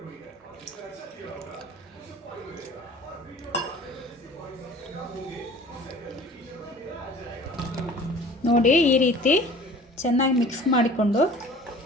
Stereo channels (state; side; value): normal; both; correlation 0.46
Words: ನೋಡಿ, ಈ ರೀತಿ ಚೆನ್ನಾಗಿ ಮಿಕ್ಸ್ ಮಾಡಿಕೊಂಡು